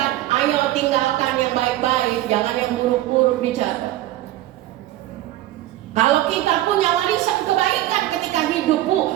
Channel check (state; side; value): quieter; left; 14.8 dB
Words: ayo tinggalkan yang baik-baik, jangan yang buruk-buruk dicatat. Kalau kita punya warisan kebaikan ketika hidup,